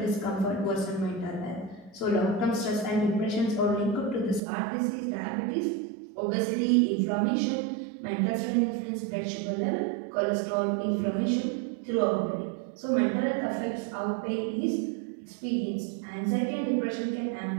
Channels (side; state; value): left; drops out; at 4.4 s